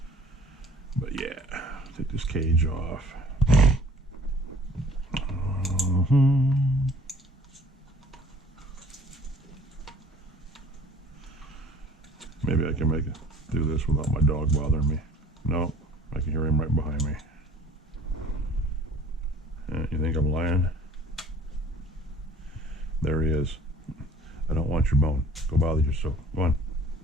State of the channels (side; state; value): both; normal; correlation 0.51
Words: But yeah, take this cage off. Maybe I can make it do this without my dog bothering me. No, I can hear him right behind me. You think I'm lying? There he is. I don't want your bone. Go bother yourself. Go on.